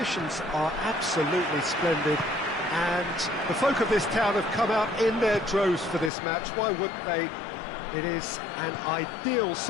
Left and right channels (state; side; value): drops out; right; at 6.1 s